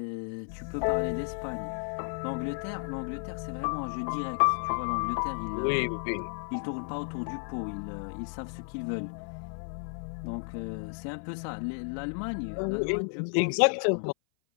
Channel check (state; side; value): silent; right; 56 dB below the other